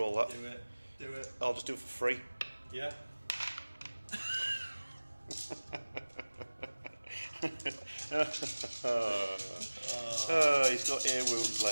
that. Do it. I'll just do it for free. Yeah. He's got a wound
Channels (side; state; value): both; inverted; correlation -1.00